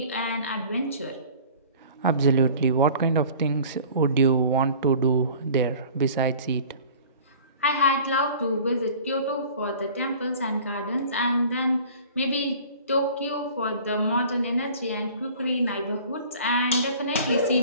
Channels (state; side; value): inverted; both; correlation -0.46